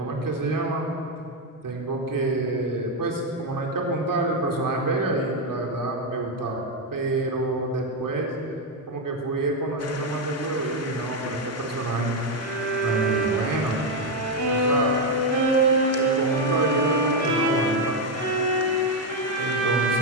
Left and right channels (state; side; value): normal; both; correlation 0.05